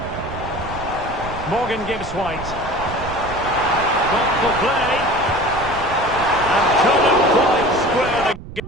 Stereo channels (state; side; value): noise; right; rumble, 12 dB below the sound